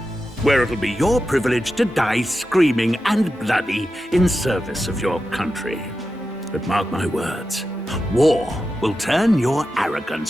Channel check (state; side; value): normal; both; correlation 0.91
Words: where it'll be your privilege to die screaming and bloody in service of your country. But mark my words, war will turn your